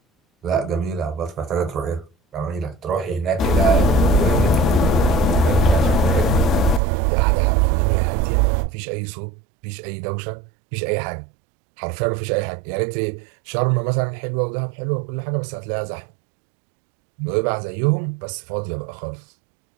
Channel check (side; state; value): left; drops out; at 6.8 s